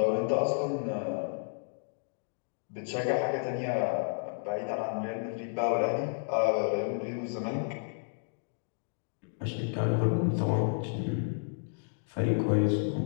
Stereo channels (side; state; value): right; silent; digital silence